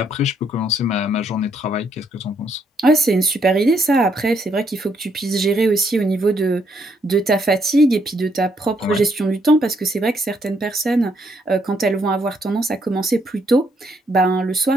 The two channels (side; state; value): both; normal; correlation 0.73